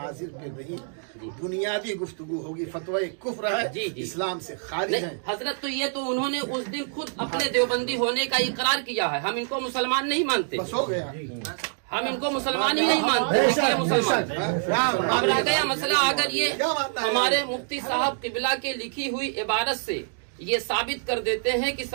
पे नहीं, बुनियादी गुफ्तगू होगी। फतवा कुफ्र है, जी, जी। इस्लाम से खारिज नहीं है। हजरत, तो ये तो उन्होंने उस दिन खुद अपने देवबंदी होने का इकरार किया है। हम इनको मुसलमान नहीं मानते, बस हो गया। हम इनको मुसलमान ही नहीं मानते, इसलिए मुसलमान। अब रह गया मसला, अगर ये क्या मानना है? हमारे मुफ्ती साहब किबला के लिखी हुई इबारत से ये साबित कर देते हैं कि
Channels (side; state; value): left; silent; digital silence